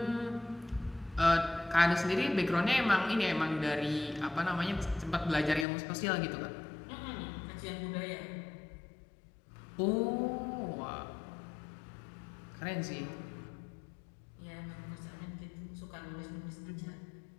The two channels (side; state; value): right; drops out; at 5.7 s